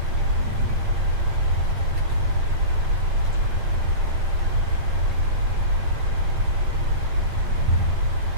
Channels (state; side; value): late; left; 8.8 ms